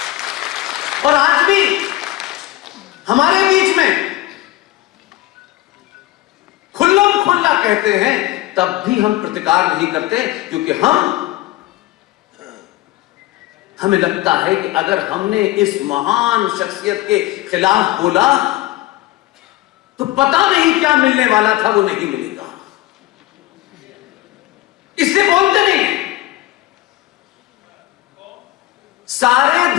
और आज भी हमारे बीच में खुल्लम खुल्ला कहते हैं, तब भी हम प्रतिकार नहीं करते, क्योंकि हमें लगता है कि अगर हमने इस महान शख्सियत के खिलाफ बोला तो पता नहीं क्या मिलने वाला था, वो नहीं मिलेगा, इसलिए बोलते नहीं। सारे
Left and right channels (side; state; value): right; quieter; 17.4 dB